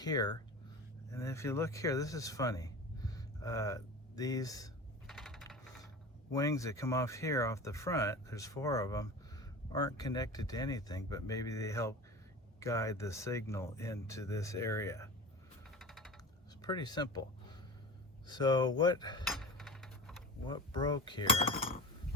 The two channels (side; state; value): both; normal; correlation 0.33